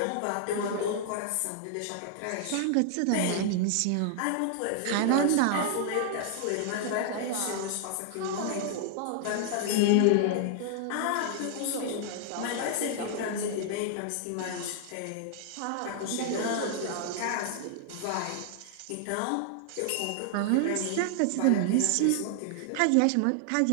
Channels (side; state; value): both; different; correlation 0.00